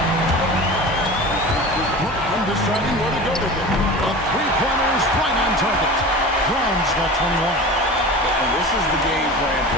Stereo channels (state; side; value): normal; both; correlation 0.34